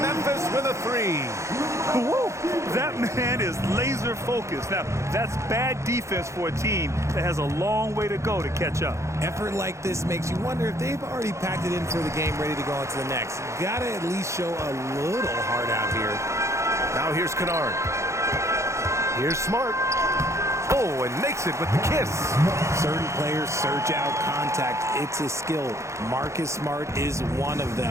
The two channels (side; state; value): left; late; 0.14 ms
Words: with a 3. Woo! That man is laser focused. Now, that's bad defense for a team that has a long way to go to catch up. Effort like this makes you wonder if they've already packed it in for the game, ready to go into the next. Gotta at least show a little heart out here. Now here's Kennard. Here's Smart. Oh, and makes it with the kiss. Certain players search out contact. It's a skill. Marcus Smart is one of